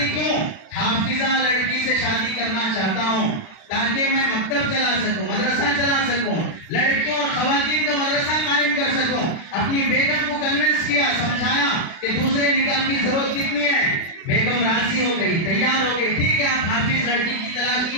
کیوں؟ حافظہ لڑکی سے شادی کرنا چاہتا ہوں تاکہ میں مکتب چلا سکوں، مدرسہ چلا سکوں، لڑکیوں اور خواتین کا مدرسہ قائم کر سکوں۔ اپنی بیگم کو کنونس کیا، سمجھایا کہ دوسرے نکاح کی ضرورت کتنی ہے۔ بیگم راضی ہو گئی، تیار ہو گئی، ٹھیک ہے آپ حافظ لڑکی کی تلاش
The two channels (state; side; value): late; right; 36 ms